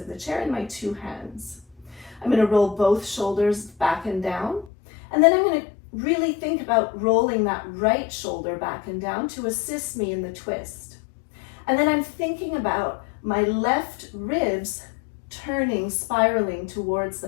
the chair in my 2 hands. I'm going to roll both shoulders back and down, and then I'm going to really think about rolling that right shoulder back and down to assist me in the twist. And then I'm thinking about my left ribs turning, spiraling towards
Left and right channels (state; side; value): drops out; right; at 4.7 s